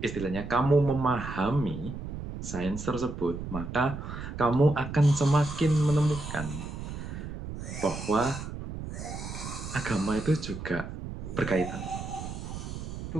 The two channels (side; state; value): right; noise; rumble, 8 dB below the sound